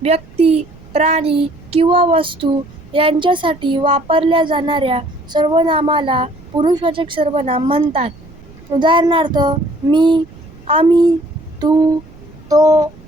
व्यक्ती, प्राणी किंवा वस्तू यांच्यासाठी वापरल्या जाणाऱ्या सर्वनामाला पुरुषवाचक सर्वनाम म्हणतात. उदाहरणार्थ, मी, आम्ही, तू, तो,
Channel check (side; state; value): right; noise; rumble, 22 dB below the sound